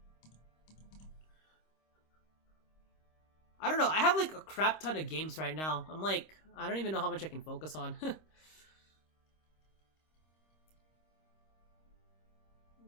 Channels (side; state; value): right; late; 26 ms